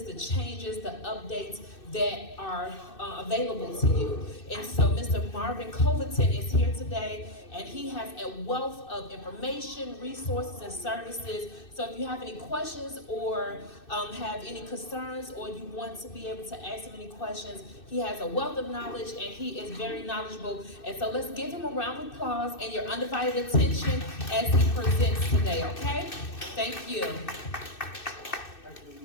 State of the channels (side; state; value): right; late; 2.6 ms